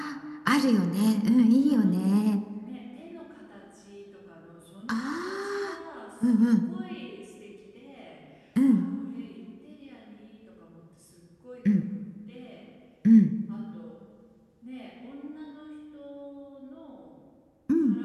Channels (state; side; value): identical; both; correlation 1.00